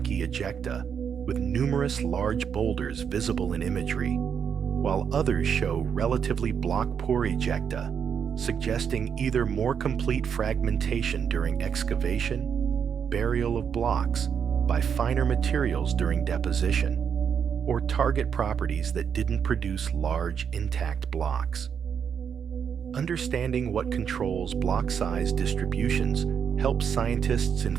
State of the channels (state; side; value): quieter; left; 7.3 dB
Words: ejecta with numerous large boulders visible in imagery, while others show relatively block-poor ejecta, suggesting either more complete fragmentation during excavation, burial of blocks by finer materials during deposition, or target properties that didn't produce large, intact blocks. Understanding what controls block size distributions helps scientists